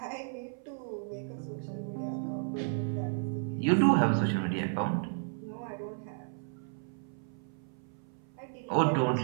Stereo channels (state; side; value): silent; left; 56 dB below the other